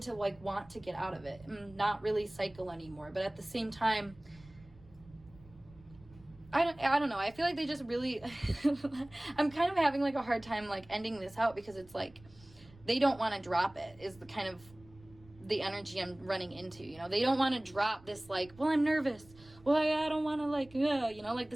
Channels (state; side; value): noise; right; rumble, 24 dB below the sound